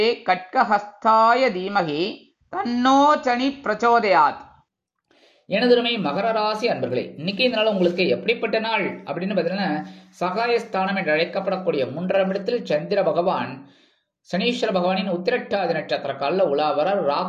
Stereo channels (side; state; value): both; identical; correlation 1.00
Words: கட்கஹஸ்தாய தீமகி தன்னோ சனி பிரச்சோதயாத். எனதுமை மகர ராசி அன்பர்களே, இன்னைக்கு இந்த நாள் உங்களுக்கு எப்படிப்பட்ட நாள் அப்படின்னு பார்த்தீங்கன்னா, சகாயஸ்தானம் என்று அழைக்கப்படக்கூடிய 3ஆம் இடத்தில் சந்திர பகவான் சனீஸ்வர பகவானின் உத்திரட்டாதி நட்சத்திர காலில் உலாவரார்.